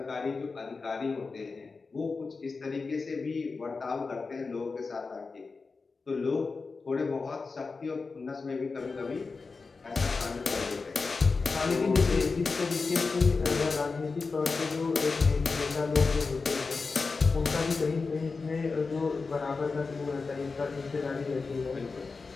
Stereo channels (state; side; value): quieter; right; 4.3 dB